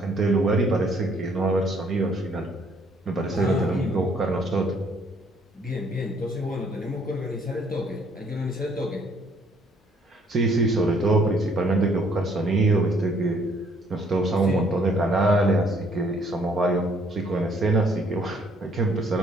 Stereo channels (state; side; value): normal; both; correlation 0.64